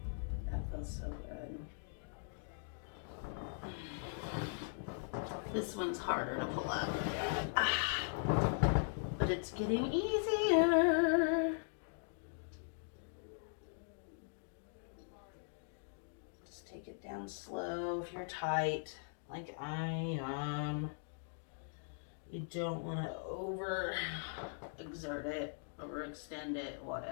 That feels so good. This one's harder to pull up. But it's getting easier. Just take it down slow if you're tight, like I am. You don't want to overexert it, overextend it,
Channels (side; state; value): right; silent; digital silence